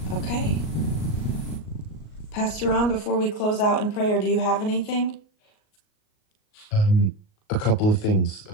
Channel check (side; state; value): right; late; 38 ms